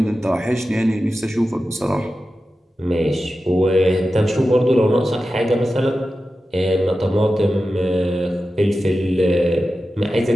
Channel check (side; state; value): both; normal; correlation 0.93